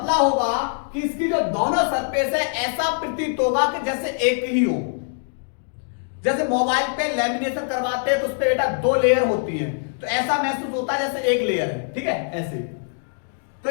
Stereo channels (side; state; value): right; silent; digital silence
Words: होगा कि इसकी जो दोनों सरफेस है ऐसा प्रतीत होगा कि जैसे एक ही हो। जैसे मोबाइल पे लेमिनेशन करवाते हैं तो उस पे बेटा 2 लेयर होती है, तो ऐसा महसूस होता है जैसे एक लेयर है। ठीक है, ऐसे। तो